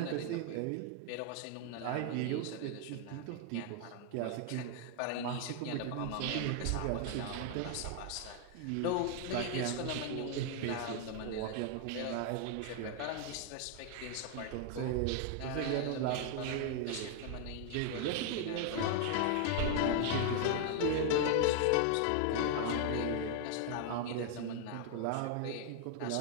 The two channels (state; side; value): different; both; correlation 0.00